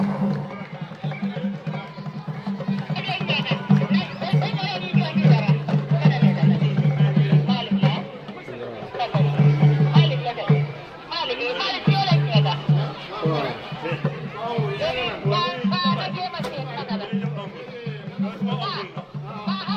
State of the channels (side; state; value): both; identical; correlation 1.00